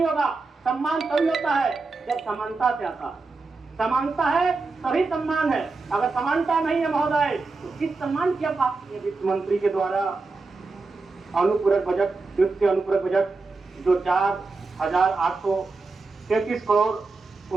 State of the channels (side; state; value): left; quieter; 3.9 dB